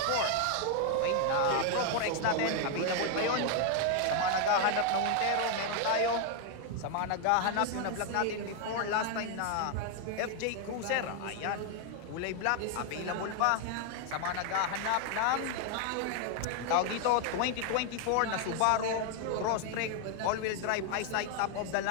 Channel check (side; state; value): both; different; correlation 0.00